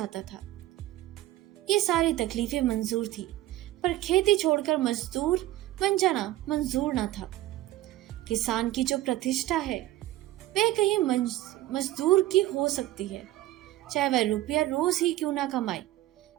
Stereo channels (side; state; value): left; quieter; 15.4 dB